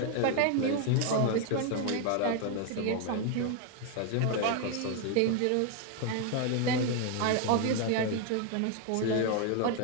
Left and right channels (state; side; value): different; both; correlation 0.01